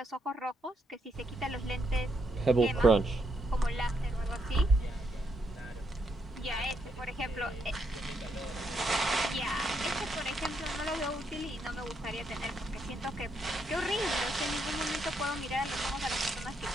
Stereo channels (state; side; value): normal; both; correlation 0.78